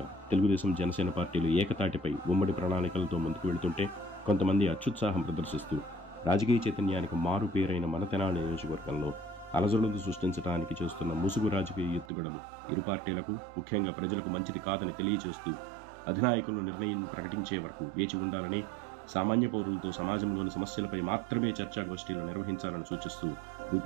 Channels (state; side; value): drops out; left; at 12.1 s